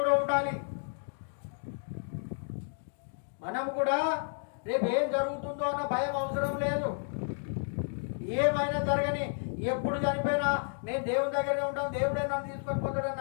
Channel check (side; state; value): right; silent; digital silence